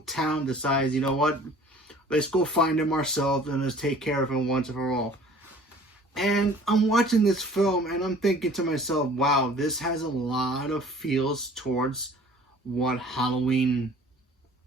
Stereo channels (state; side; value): normal; both; correlation 0.49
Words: town decides, you know what, let's go find him ourselves and let's take care of him once and for all. And I'm watching this film and I'm thinking to myself, wow, this has a lot of feels towards what Halloween